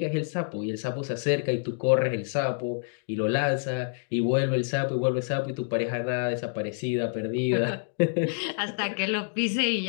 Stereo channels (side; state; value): right; silent; digital silence